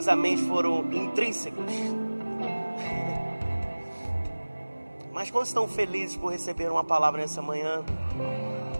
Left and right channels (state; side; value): inverted; both; correlation -1.00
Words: améns foram intrínsecos. Mas quando estão felizes por receber uma palavra nessa manhã?